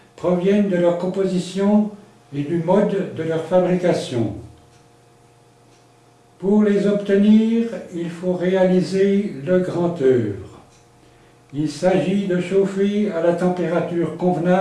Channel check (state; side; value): identical; both; correlation 1.00